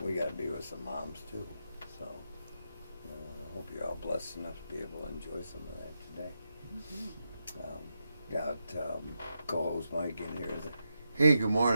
we got to be with some moms too. So I hope you're all blessed enough to be able to enjoy some of that today. Got co-host Mike in here. Hey, good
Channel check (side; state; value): both; inverted; correlation -0.85